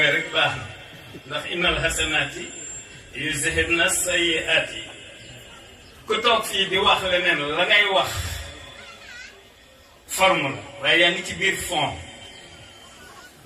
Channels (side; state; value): both; identical; correlation 1.00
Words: rek baax na ndax innal hasanaati yuzhibna sayyi'aati ku toog fii di wax leneen la ngay wax forme la waaye yaa ngi ci biir fond